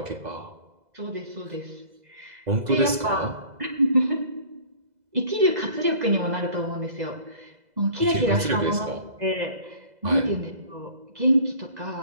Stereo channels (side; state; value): left; late; 2.0 ms